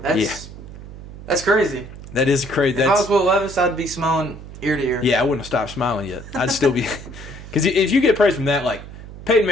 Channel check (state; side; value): noise; right; hum, 14 dB below the sound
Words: crazy. That is crazy. If I was Will Levis, I'd be smiling ear to ear. Yeah, I wouldn't have stopped smiling yet. I'd still be, because if you get praise from that, like Peyton